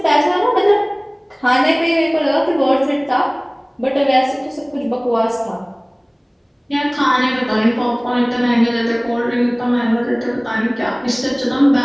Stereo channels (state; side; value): identical; both; correlation 1.00